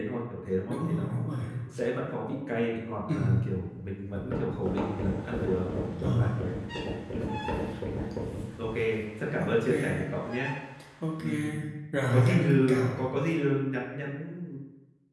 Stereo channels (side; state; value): both; identical; correlation 1.00